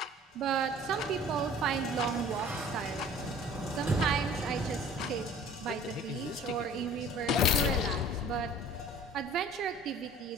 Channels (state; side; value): normal; both; correlation 0.47